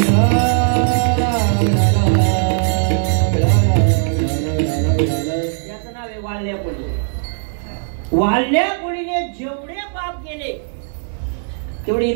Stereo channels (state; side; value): silent; left; digital silence